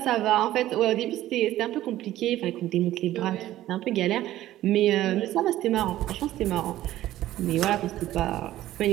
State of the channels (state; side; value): quieter; left; 14.3 dB